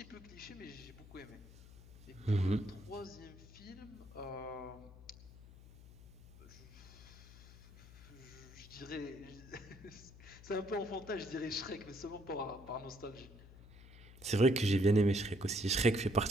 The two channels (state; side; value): noise; left; hum, 19 dB below the sound